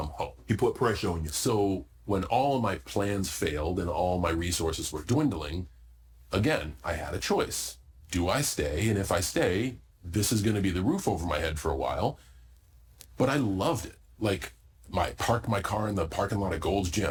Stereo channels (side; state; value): both; identical; correlation 1.00